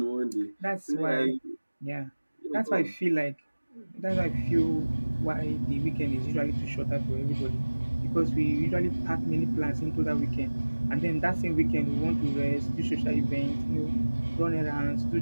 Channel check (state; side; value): inverted; both; correlation -1.00